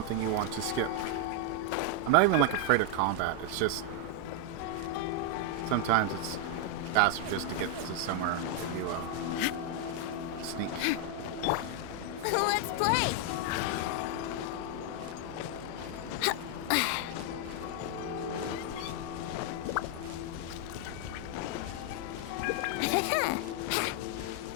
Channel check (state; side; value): different; both; correlation 0.00